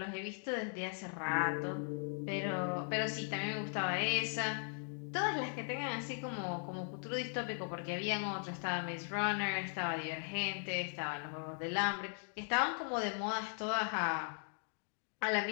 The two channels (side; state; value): right; silent; 52 dB below the other